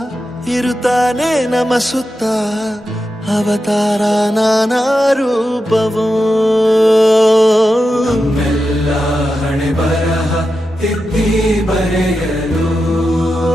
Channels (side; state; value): both; normal; correlation 0.90